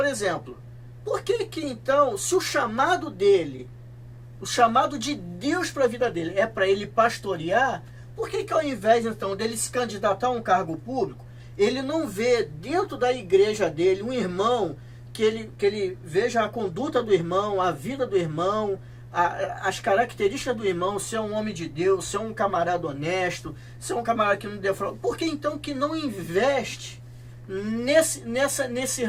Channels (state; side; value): identical; both; correlation 1.00